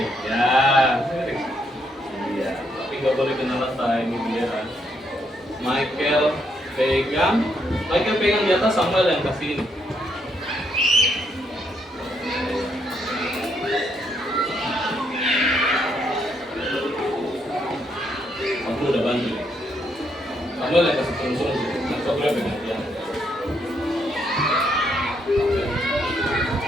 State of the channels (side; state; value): both; normal; correlation 0.75